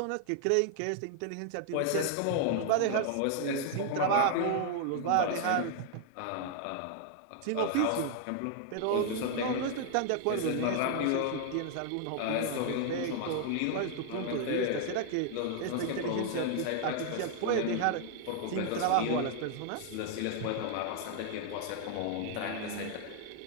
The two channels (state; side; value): different; both; correlation 0.00